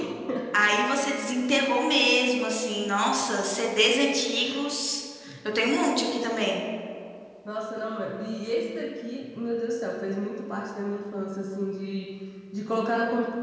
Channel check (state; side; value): identical; both; correlation 1.00